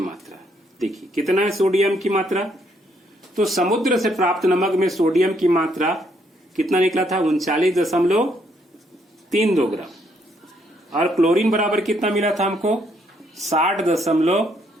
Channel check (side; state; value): both; normal; correlation 0.71